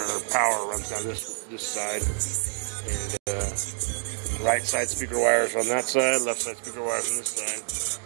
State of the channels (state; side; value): silent; left; digital silence